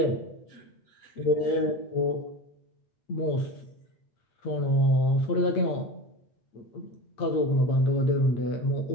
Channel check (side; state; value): right; late; 8.6 ms